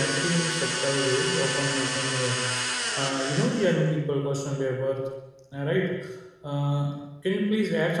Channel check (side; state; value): both; identical; correlation 1.00